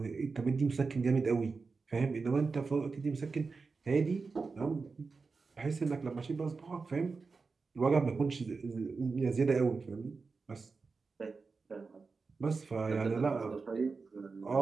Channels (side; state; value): left; quieter; 4.5 dB